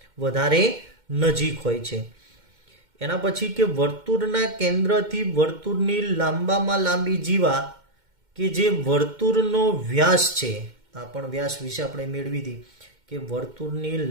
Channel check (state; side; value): late; left; 2.1 ms